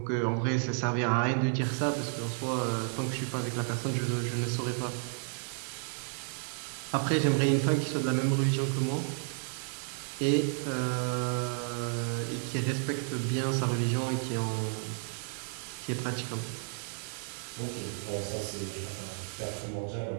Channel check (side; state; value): left; silent; 56 dB below the other